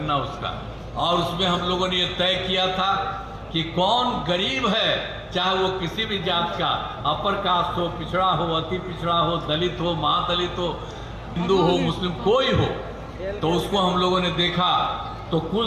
उसका। और उसमें हम लोगों ने ये तय किया था कि कौन गरीब है, चाहे वो किसी भी जात का, अपर कास्ट हो, पिछड़ा हो, अति पिछड़ा हो, दलित हो, महादलित हो, हिंदू हो, मुस्लिम, कोई हो, तो उसको हम लोगों ने देखा तो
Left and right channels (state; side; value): identical; both; correlation 1.00